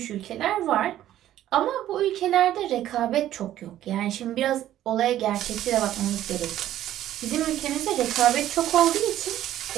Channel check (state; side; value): quieter; left; 12.7 dB